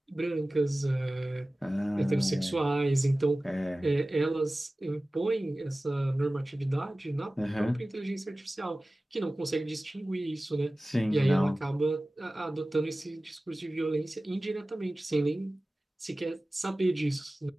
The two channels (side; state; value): both; normal; correlation 0.97